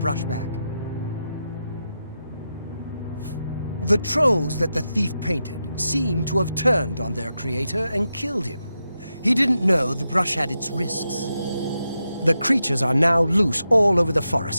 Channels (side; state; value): both; inverted; correlation -0.88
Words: back. The trolls that the thief painted seem to have turned on their creator and killed him. He didn't know the brush had its risks. The creatures are now loose all over the